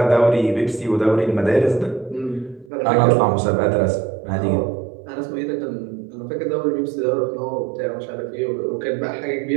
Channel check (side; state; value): left; drops out; at 2.7 s